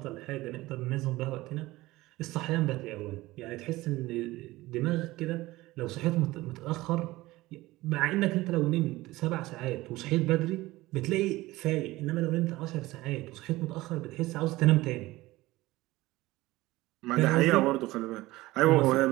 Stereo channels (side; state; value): left; quieter; 18.7 dB